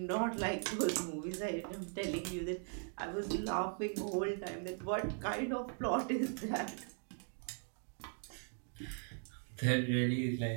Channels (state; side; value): silent; left; 52 dB below the other